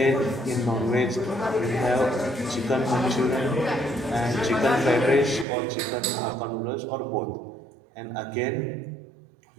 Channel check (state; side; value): drops out; left; at 5.5 s